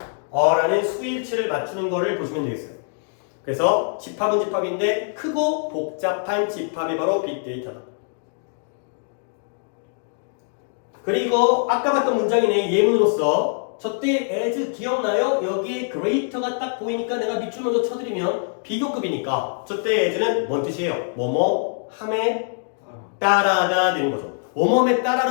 라는 수일치를 맞추는 거를 보시면 되겠어요. 그래서 집합은 집합인데 크고 복잡한 집합이 바로 빅데이터다. 그리고 아까 봤던 문장이네. 예문으로서 저때 as 기억나요? 여기에 greater가 딱 보이니까 내가 밑줄 먼저 쳐드리면 비교급이니까 저때 as는 뭔 뜻이에요? 뭐뭐 함에 따라가 되는 거죠. 뭐뭐에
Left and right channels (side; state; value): right; silent; digital silence